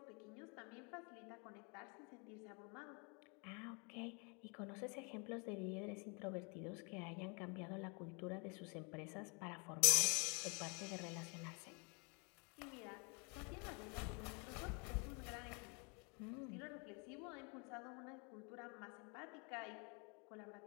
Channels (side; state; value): right; quieter; 33.9 dB